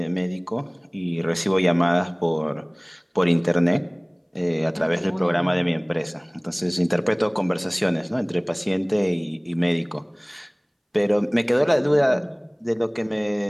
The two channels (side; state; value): both; identical; correlation 1.00